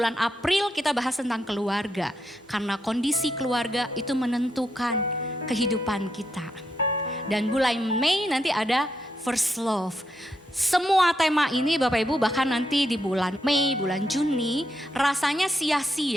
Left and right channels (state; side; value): normal; both; correlation 0.81